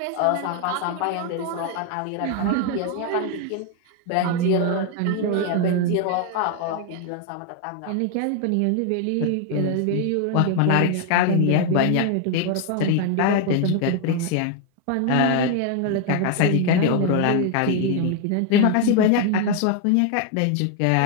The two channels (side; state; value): both; different; correlation 0.00